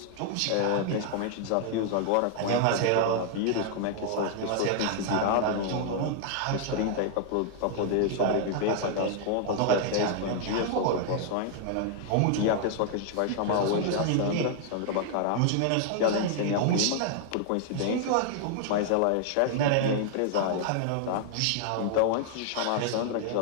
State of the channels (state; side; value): different; both; correlation 0.00